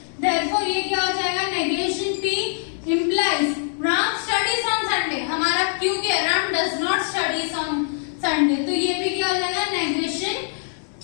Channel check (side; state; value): right; silent; digital silence